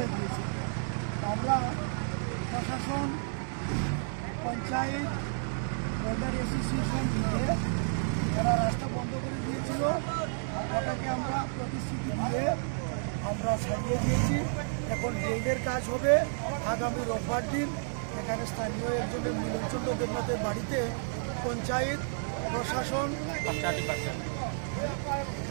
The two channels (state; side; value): silent; left; 57 dB below the other